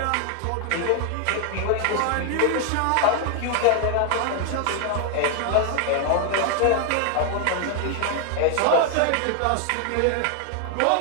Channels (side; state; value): both; different; correlation 0.00